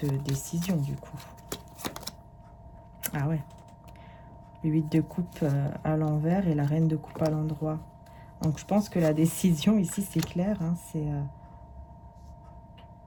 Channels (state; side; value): identical; both; correlation 1.00